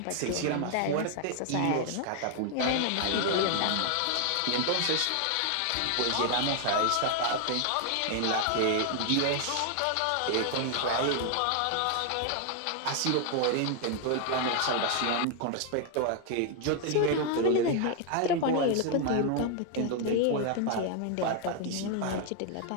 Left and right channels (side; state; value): both; different; correlation 0.00